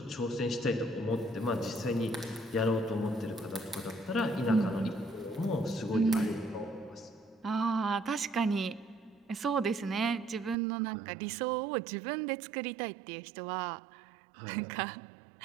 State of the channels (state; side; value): drops out; left; at 10.6 s